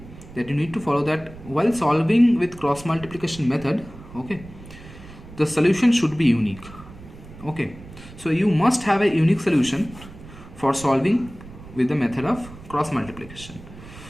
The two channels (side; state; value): right; noise; rumble, 17 dB below the sound